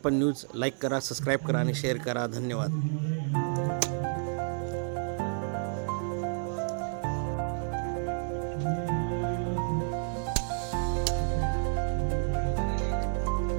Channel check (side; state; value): left; silent; 56 dB below the other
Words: न्यूज लाईक करा, सबस्क्राईब करा आणि शेअर करा। धन्यवाद।